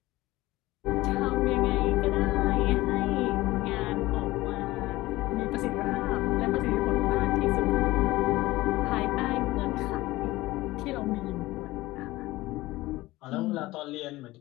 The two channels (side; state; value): right; quieter; 18.7 dB